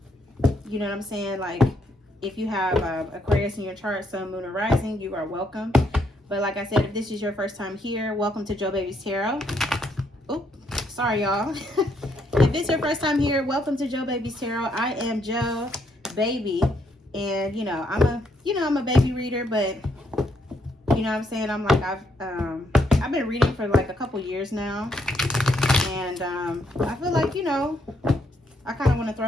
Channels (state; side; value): normal; both; correlation 0.73